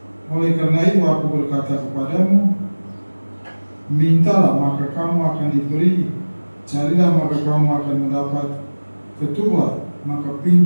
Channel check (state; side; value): inverted; both; correlation -1.00